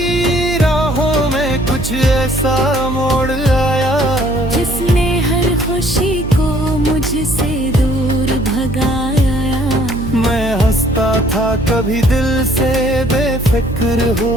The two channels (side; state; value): right; noise; hum, 7 dB below the sound